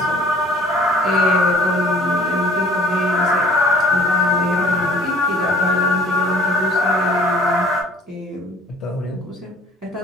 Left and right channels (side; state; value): both; normal; correlation 0.52